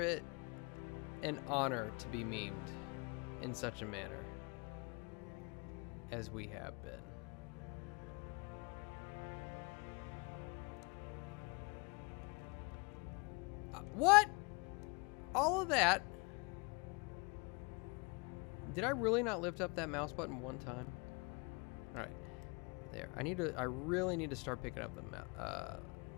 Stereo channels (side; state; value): right; quieter; 30.7 dB